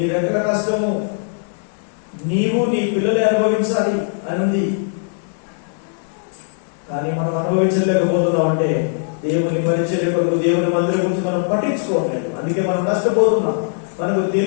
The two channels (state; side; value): silent; right; 66 dB below the other